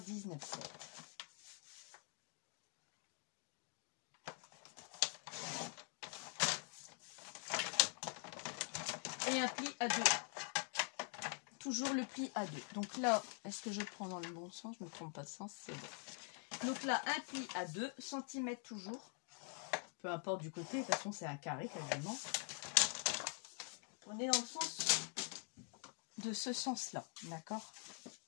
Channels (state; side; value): quieter; right; 36.4 dB